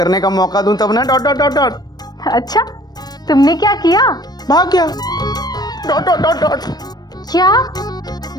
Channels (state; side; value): late; right; 0.19 ms